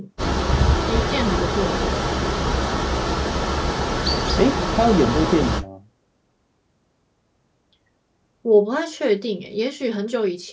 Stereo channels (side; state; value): both; identical; correlation 1.00